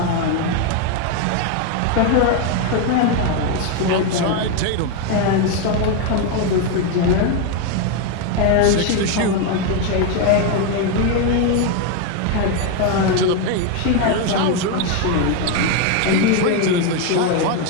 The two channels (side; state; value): both; different; correlation 0.01